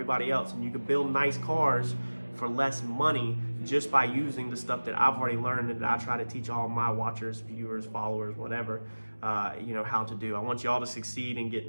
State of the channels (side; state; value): both; inverted; correlation -1.00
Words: else. And you can build nice cars for less money just by using the stuff that I've already learned and that I try to teach all my watchers, viewers, followers, whatever, you know, how to do. I want y'all to succeed and get